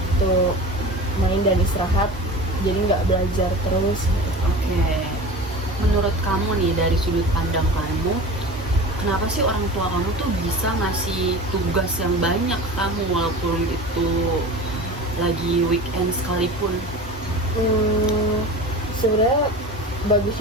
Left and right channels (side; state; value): both; normal; correlation 0.34